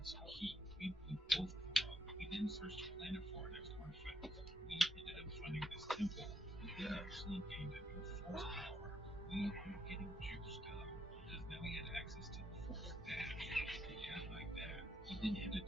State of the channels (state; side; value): normal; both; correlation 0.76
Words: some heat. We blew both of them up. We then searched the planet for our next artifact. We ended up finding this temple. We actually gained a new force power. We were getting juiced up because now we had access to the force dash. Yeah, like that. We then headed